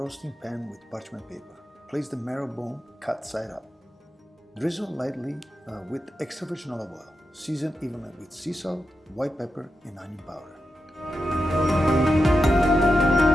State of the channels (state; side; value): normal; both; correlation 0.89